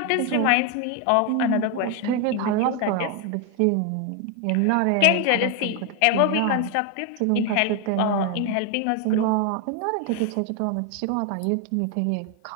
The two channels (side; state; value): both; different; correlation 0.01